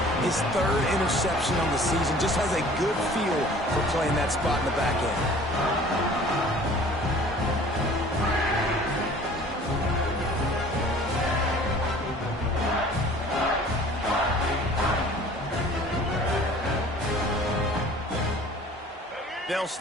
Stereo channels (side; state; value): both; normal; correlation 0.48